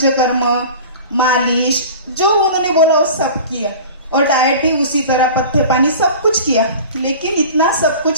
मालिश, जो उन्होंने बोला वो सब किया। और डाइट भी उसी तरह, पत्ते पानी सब कुछ किया। लेकिन इतना सब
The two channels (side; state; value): both; inverted; correlation -0.38